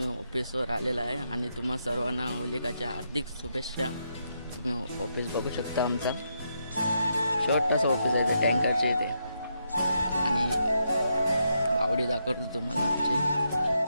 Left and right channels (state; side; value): inverted; both; correlation -0.81